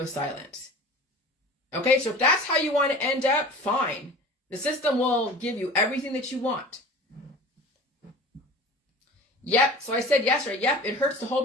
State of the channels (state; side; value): normal; both; correlation 0.40